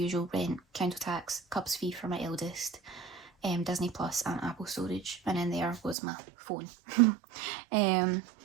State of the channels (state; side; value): drops out; left; at 6.0 s